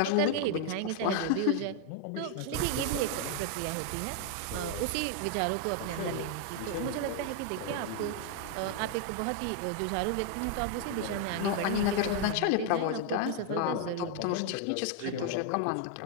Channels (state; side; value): different; both; correlation 0.00